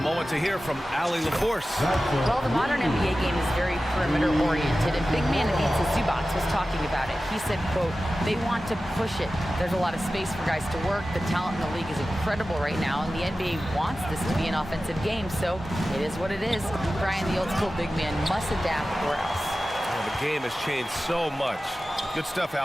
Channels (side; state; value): both; normal; correlation 0.95